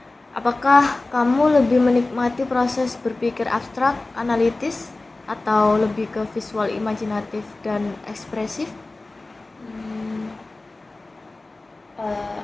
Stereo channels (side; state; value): right; quieter; 3.1 dB